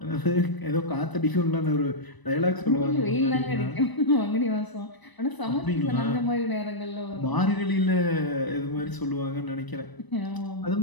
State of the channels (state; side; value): late; right; 1.0 ms